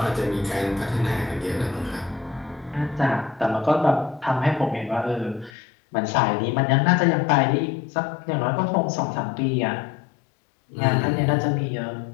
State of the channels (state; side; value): drops out; right; at 5.5 s